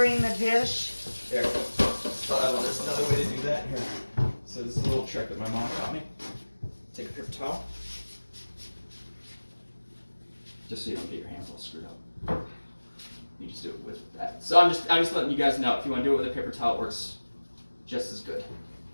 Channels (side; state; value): both; inverted; correlation -1.00